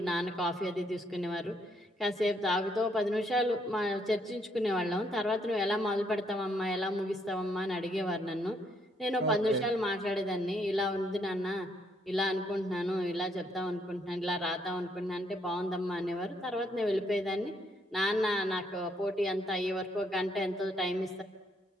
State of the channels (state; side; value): normal; both; correlation 0.72